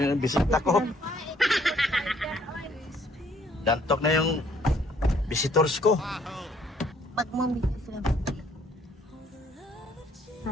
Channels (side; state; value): both; normal; correlation 0.63